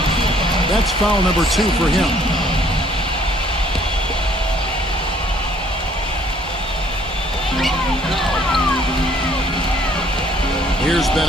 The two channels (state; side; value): normal; both; correlation 0.61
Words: That's foul number 2 for him. Here's